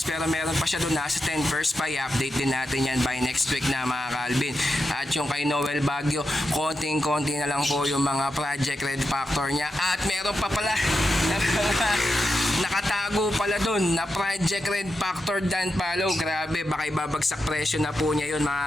pero meron pa siya doon, nasa 10 first pa. I-update din natin yan by next week na mga Calvin. At yung kay Noel Baguio, konting-konti na lang po yung mga Project Red Factor niya, at meron pa pala nakatago pala doon na Project Red Factor Dan Palo. Grabe, baka ibabagsak presyo na po niya yun mga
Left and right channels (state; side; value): normal; both; correlation 0.88